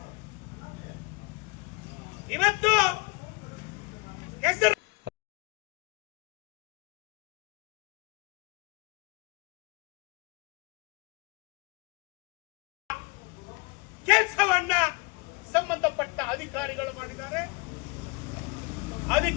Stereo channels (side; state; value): right; quieter; 28.0 dB